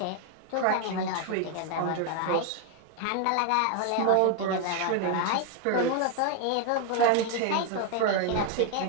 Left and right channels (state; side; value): different; both; correlation 0.01